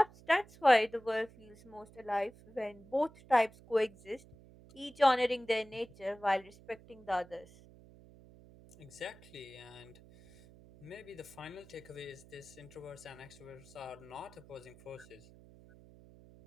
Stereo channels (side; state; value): right; noise; hum, 22 dB below the sound